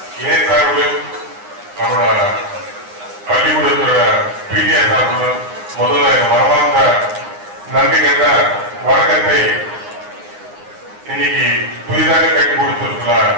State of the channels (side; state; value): left; late; 9.7 ms